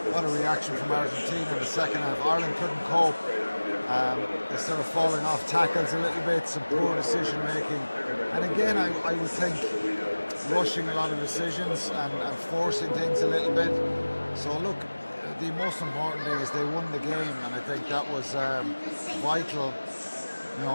what a reaction from Argentina in the second half. Ireland couldn't cope. They started falling off tackles a little bit, some poor decision making, and again, I would think rushing a lot of decisions and forcing things a little bit. So look, the most important thing is they won the game, and I think that was vital. You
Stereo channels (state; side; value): inverted; both; correlation -1.00